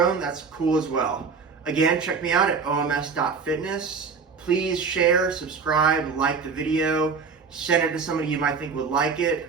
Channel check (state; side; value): quieter; left; 5.2 dB